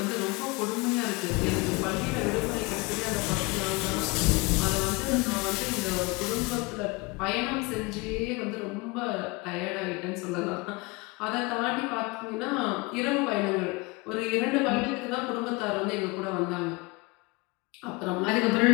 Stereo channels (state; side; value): quieter; right; 26.1 dB